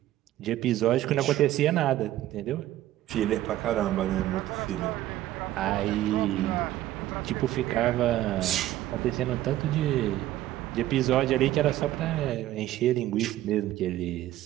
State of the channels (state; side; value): quieter; left; 14.2 dB